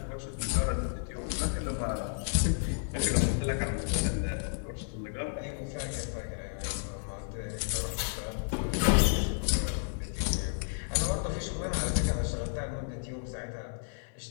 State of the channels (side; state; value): right; silent; 56 dB below the other